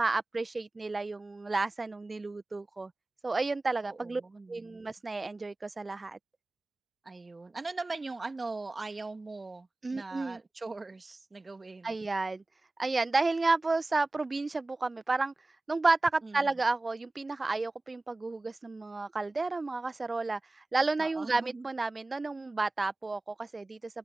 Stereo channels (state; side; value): quieter; left; 3.0 dB